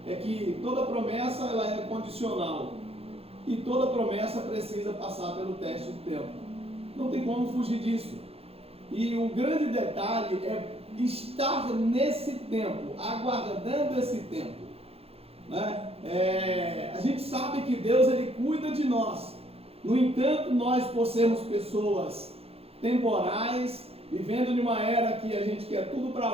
é que toda promessa ela é condicional. E toda promessa precisa passar pelo teste do tempo. Não tem como fugir disso. E o grande detalhe é estar nesse tempo, aguardando esse tempo. Né? A gente sabe que Deus ele cuida de nós. No entanto, nós, por sermos pessoas temporais, vivendo numa era que a gente quer tudo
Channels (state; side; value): late; left; 0.29 ms